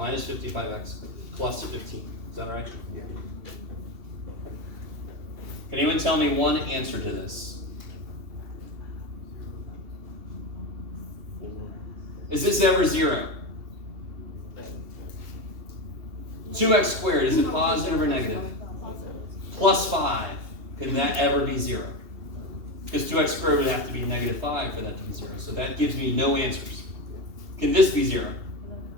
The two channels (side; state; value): left; late; 2.7 ms